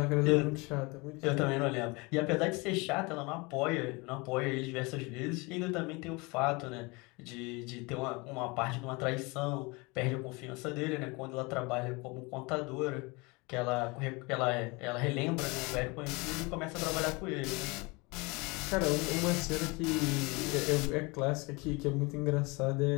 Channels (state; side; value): quieter; right; 26.6 dB